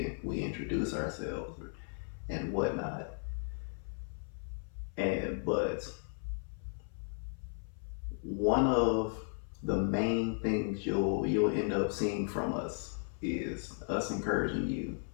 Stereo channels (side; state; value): right; silent; 54 dB below the other